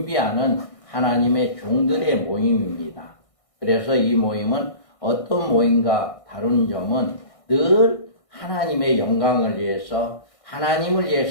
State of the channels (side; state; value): right; late; 1.6 ms